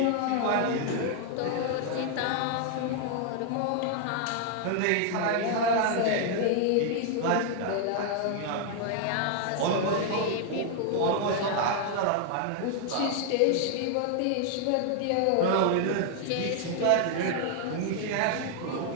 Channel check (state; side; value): different; both; correlation 0.00